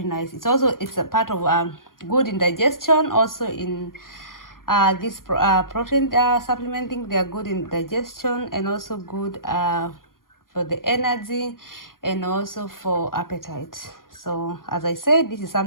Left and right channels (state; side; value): late; right; 0.91 ms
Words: nice. It's a part of good in digestion. Also in this protein supplementing, they are good in digestion, and also good for the energy, and also for appetite. So as I said, this is